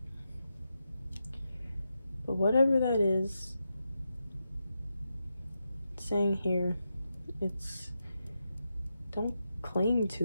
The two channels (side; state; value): both; inverted; correlation -0.87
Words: But whatever that is, it's saying here, it's don't cling